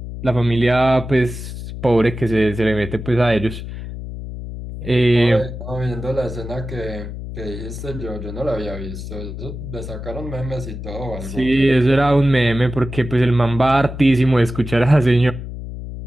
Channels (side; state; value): left; noise; hum, 9 dB below the sound